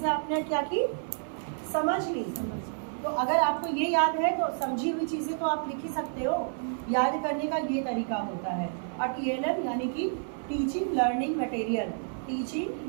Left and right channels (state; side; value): silent; left; 57 dB below the other